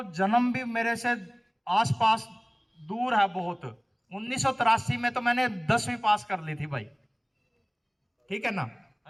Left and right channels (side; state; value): both; identical; correlation 1.00